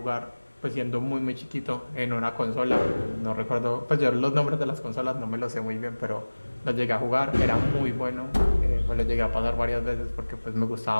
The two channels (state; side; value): inverted; both; correlation -1.00